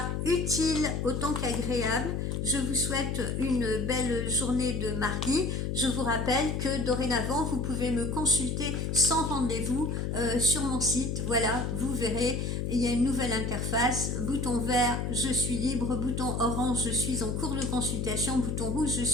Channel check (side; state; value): left; noise; hum, 1 dB below the sound